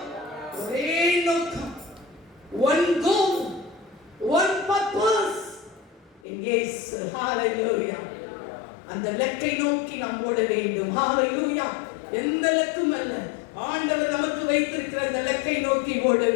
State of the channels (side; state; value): right; drops out; at 6.2 s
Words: ஒரே நோக்கம், one goal, one purpose. Yes, hallelujah. அந்த லக்கை நோக்கி நாம் ஓட வேண்டும். ஹalleluya. எந்த லக்கும் அல்ல, ஆண்டவர் நமக்கு வைத்திருக்கிற அந்த லக்கை நோக்கி ஓட